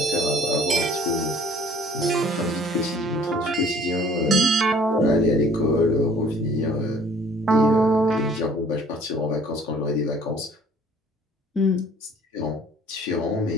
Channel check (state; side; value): normal; both; correlation 0.55